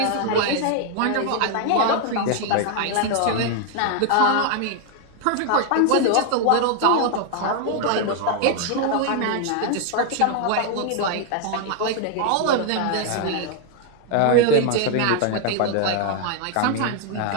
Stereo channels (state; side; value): different; both; correlation 0.00